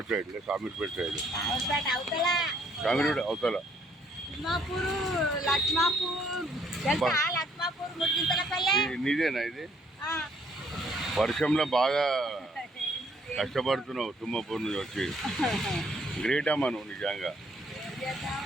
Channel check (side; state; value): both; normal; correlation 0.66